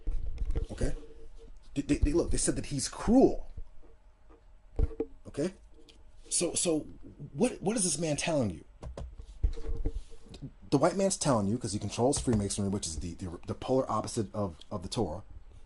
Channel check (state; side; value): identical; both; correlation 1.00